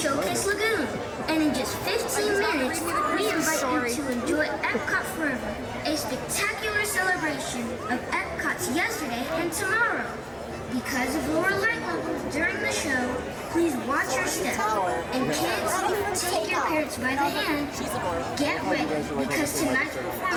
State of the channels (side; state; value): both; identical; correlation 1.00